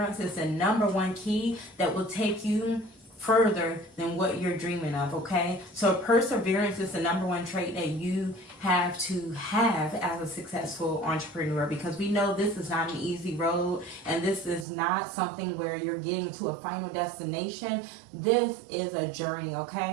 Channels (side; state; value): left; drops out; at 14.7 s